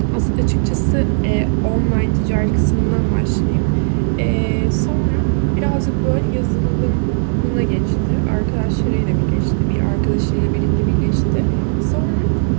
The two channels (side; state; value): left; silent; digital silence